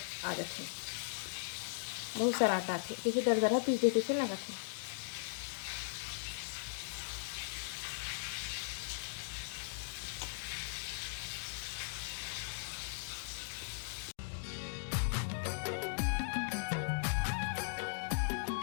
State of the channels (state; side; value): silent; right; digital silence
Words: जाते हैं, बहुत सारा आटा आते, जैसे दरदरा पीस देते से लगा थे।